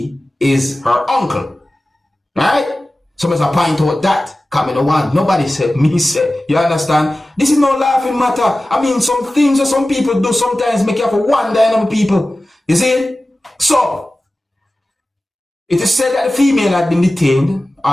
is her uncle. Right? So I must point out that coming to one. Nobody said, me said. You understand? This is no laughing matter. I mean, some things that some people do sometimes make you have to wonder on people. You see? So, it is said that the female had been detained,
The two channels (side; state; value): both; normal; correlation 0.96